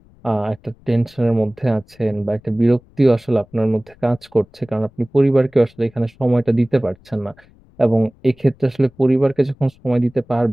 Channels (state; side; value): noise; left; rumble, 29 dB below the sound